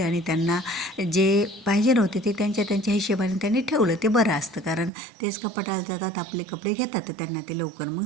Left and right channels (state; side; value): drops out; left; at 4.9 s